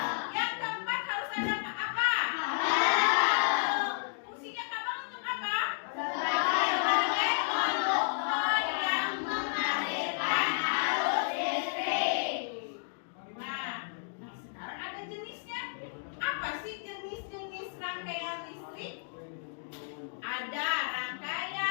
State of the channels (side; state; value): right; silent; digital silence